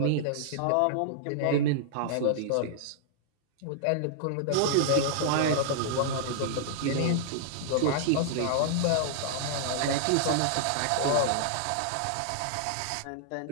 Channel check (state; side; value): different; both; correlation -0.01